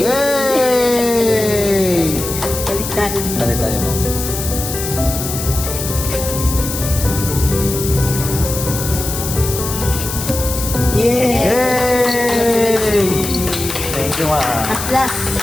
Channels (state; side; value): noise; left; hiss, 6 dB below the sound